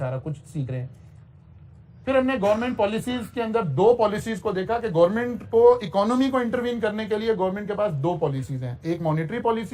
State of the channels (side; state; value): both; identical; correlation 1.00